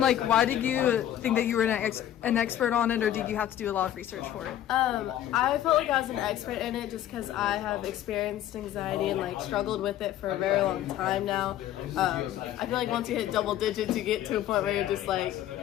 why did you think that you were an expert on it, or did you have to do a lot of research for it? I felt like I was an expert in it just because I have experienced anxiety and like struggled with it for a very long time now. I feel like once you hit double digits, you get to a point where you're just like,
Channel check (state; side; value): quieter; right; 12.0 dB